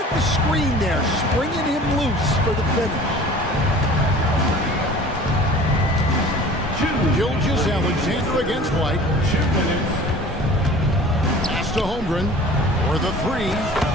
the screen there, springing him loose for the finish. Gilgeous-Alexander against White. Pass to Holmgren for the 3.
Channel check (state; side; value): normal; both; correlation 0.44